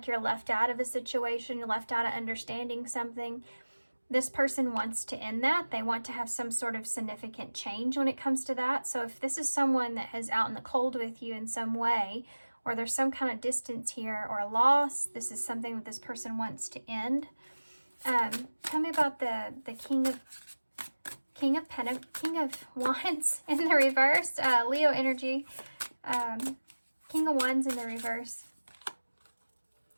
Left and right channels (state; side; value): inverted; both; correlation -1.00